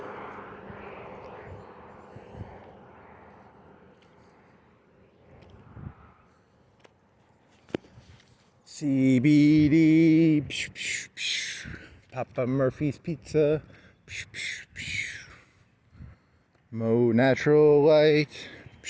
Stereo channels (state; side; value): identical; both; correlation 1.00